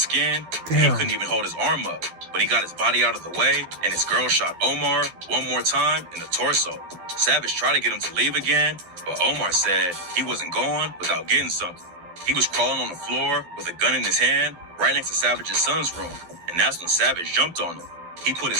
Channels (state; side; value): late; left; 12 ms